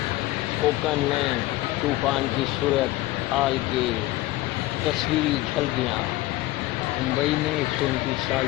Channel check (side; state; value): right; quieter; 18.2 dB